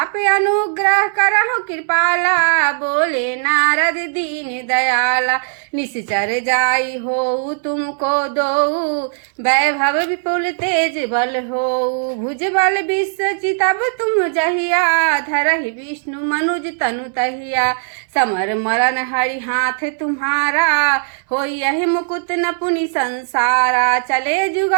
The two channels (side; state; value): left; silent; digital silence